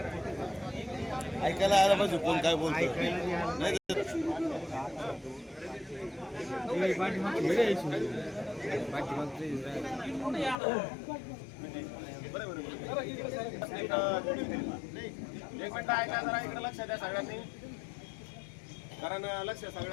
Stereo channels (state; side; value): drops out; right; at 10.6 s